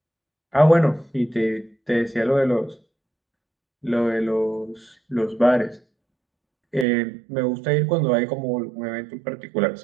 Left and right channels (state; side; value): drops out; left; at 6.9 s